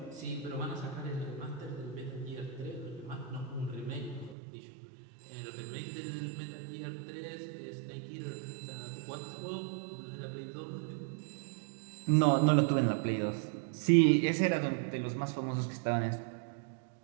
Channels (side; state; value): left; drops out; at 4.4 s